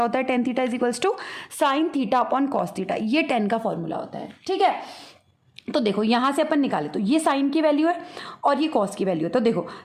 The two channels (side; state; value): both; identical; correlation 1.00